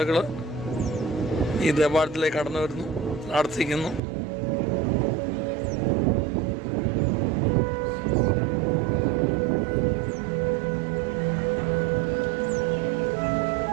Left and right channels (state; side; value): drops out; left; at 4.0 s